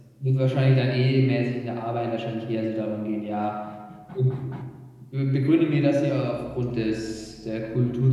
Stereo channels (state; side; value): identical; both; correlation 1.00